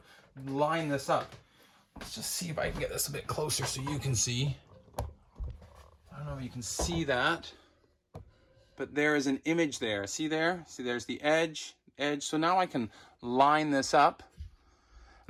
line this up. Let's just see if I can get this a bit closer so you can see. I don't know if you can see that, but there is an image there. See there? See, there's the edge. So now I can line this up.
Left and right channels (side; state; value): both; identical; correlation 1.00